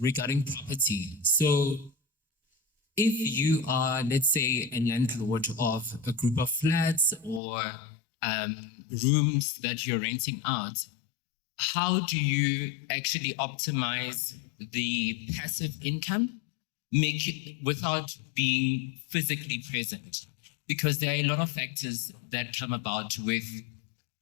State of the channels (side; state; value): right; drops out; at 7.4 s